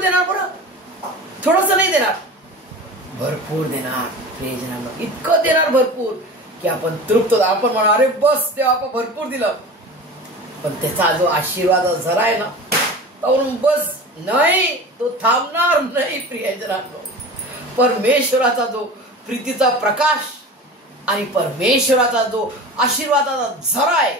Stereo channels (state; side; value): normal; both; correlation 0.34